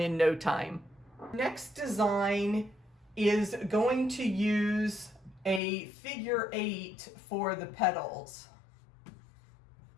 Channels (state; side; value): drops out; right; at 5.6 s